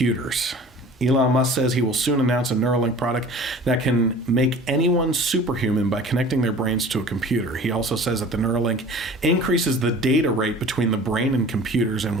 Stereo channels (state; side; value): normal; both; correlation 0.43